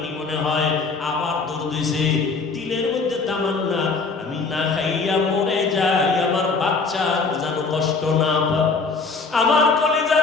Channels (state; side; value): quieter; right; 4.4 dB